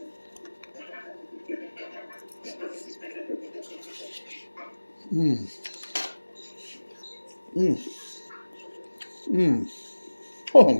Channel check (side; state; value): both; inverted; correlation -1.00